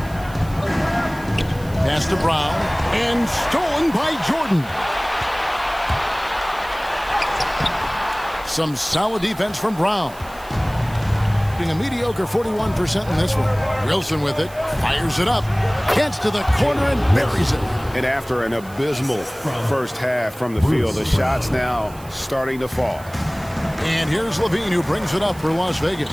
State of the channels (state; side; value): noise; right; hiss, 21 dB below the sound